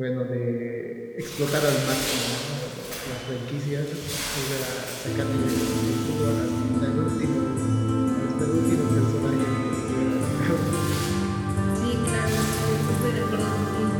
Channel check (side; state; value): both; identical; correlation 1.00